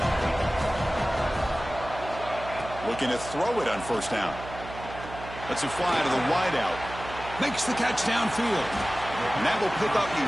Looking to throw it on first down. Lets it fly to the wideout. Makes the catch downfield. And that will pick up the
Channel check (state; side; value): noise; right; hum, 12 dB below the sound